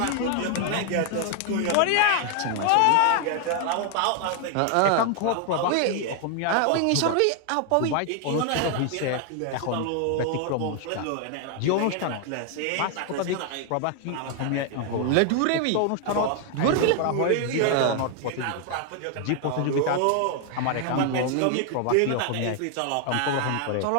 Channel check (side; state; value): both; different; correlation 0.00